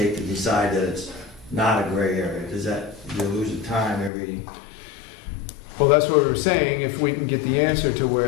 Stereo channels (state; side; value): drops out; right; at 4.1 s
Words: to decide that it's not a gray area? Does that, you lose the time every, Well, that's what we were saying, if we can get the answer to